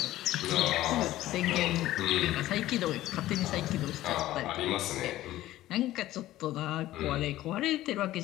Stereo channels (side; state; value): right; quieter; 15.1 dB